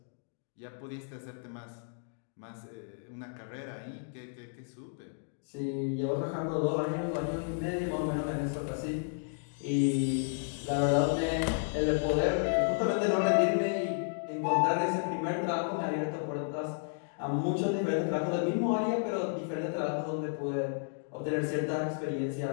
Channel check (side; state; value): right; silent; digital silence